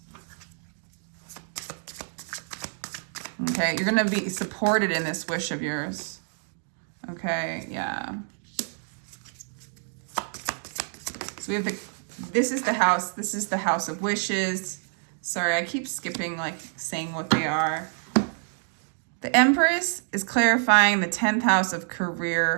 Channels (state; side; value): silent; left; digital silence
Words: Okay, you're going to be supported in this wish of yours. Okay, yeah. So we have this is the house of wishes. Sorry, I keep skipping, like, saying what they are. The Empress is clarifying the 10th house of